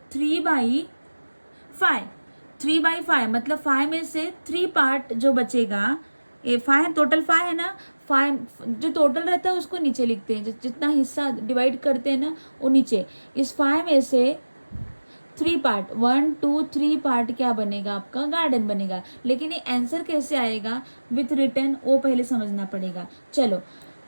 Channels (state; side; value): inverted; both; correlation -1.00